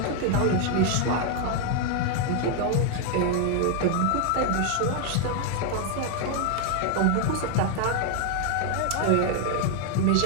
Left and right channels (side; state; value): both; different; correlation 0.00